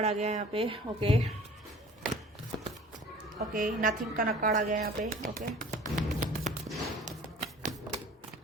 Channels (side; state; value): both; normal; correlation 0.47